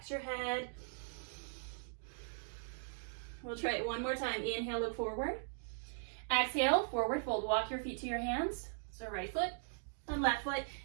your head. We'll try it one more time. Inhale, look forward. Exhale, forward fold. Walk your feet to your hands. So right foot and left foot.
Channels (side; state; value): left; silent; digital silence